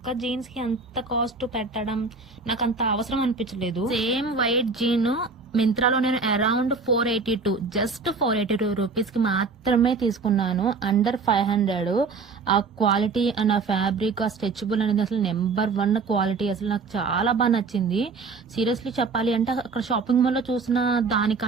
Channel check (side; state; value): left; quieter; 4.4 dB